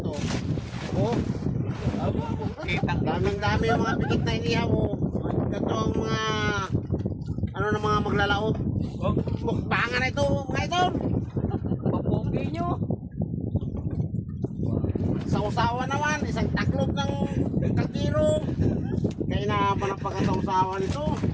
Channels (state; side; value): identical; both; correlation 1.00